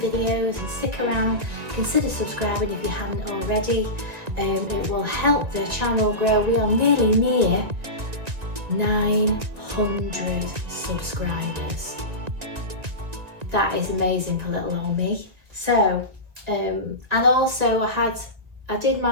and stick around. Consider subscribing if you haven't already. It will help the channel grow. We are nearly near 900 subscribers. That is amazing for little old me. So, and also I did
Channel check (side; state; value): left; late; 1.7 ms